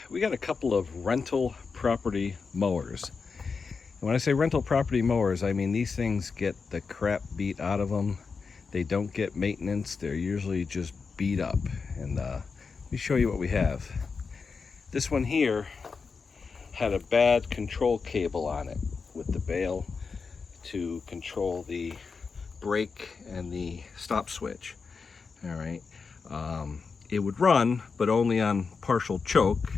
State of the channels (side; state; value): right; quieter; 5.0 dB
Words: We got a couple of rental property mowers. And when I say rental property mowers, I mean these things get the crap beat out of them. They don't get maintenance. They're usually just beat up. And let me show you what we have. This one here had a bad control cable on it with the bail to control the brake and the stop switch. All right. It would run, but only on partial choke.